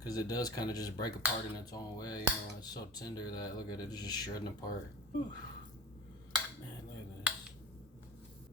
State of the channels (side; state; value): both; normal; correlation 0.33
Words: it does kind of just break apart in its own way. You know, it's so tender that, look at it, it's just shredding apart. Whew. Man, look at this.